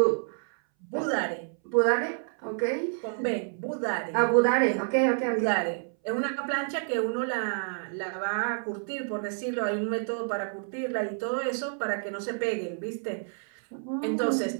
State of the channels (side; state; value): left; silent; 59 dB below the other